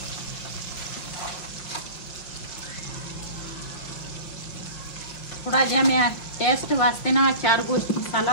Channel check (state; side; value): late; right; 5.6 ms